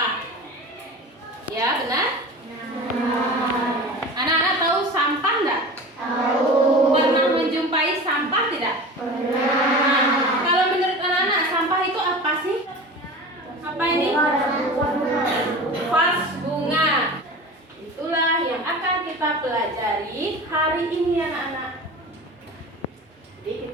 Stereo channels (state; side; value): normal; both; correlation 0.34